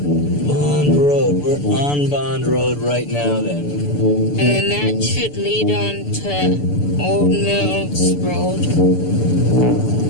Bond Road. We're on Bond Road right now, then. And that should lead on to Old Mills Road.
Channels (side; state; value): right; late; 6.9 ms